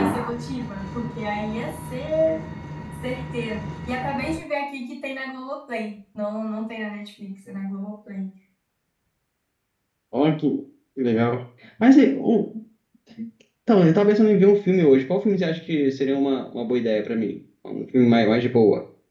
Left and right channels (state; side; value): identical; both; correlation 1.00